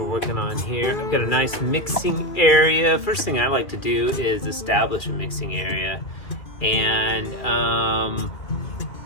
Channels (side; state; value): right; late; 2.7 ms